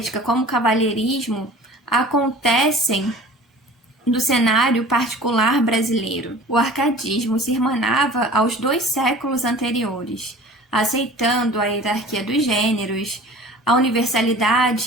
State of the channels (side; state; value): both; normal; correlation 0.43